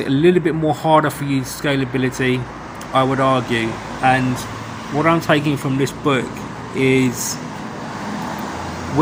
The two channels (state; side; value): identical; both; correlation 1.00